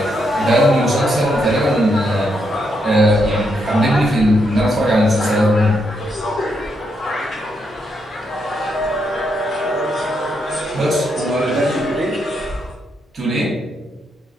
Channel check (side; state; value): both; normal; correlation 0.79